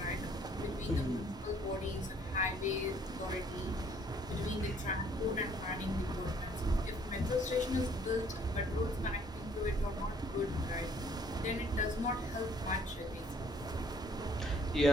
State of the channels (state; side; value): normal; both; correlation 0.61